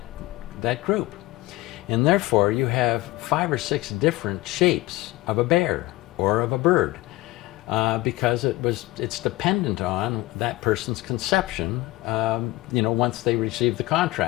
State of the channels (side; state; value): right; quieter; 18.9 dB